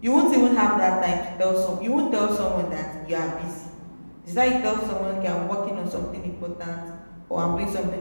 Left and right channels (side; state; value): both; inverted; correlation -1.00